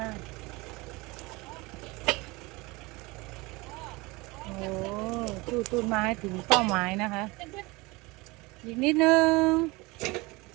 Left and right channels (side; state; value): left; quieter; 23.7 dB